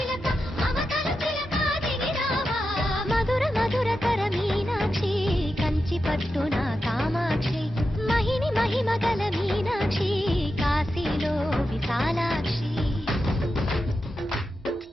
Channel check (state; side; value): normal; both; correlation 0.89